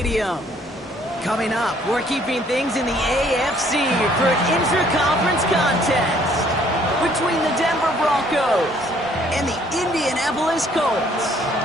Coming up, we're keeping things in the AFC for an intra-conference contest between the Denver Broncos and the Indianapolis Colts.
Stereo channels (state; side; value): normal; both; correlation 0.62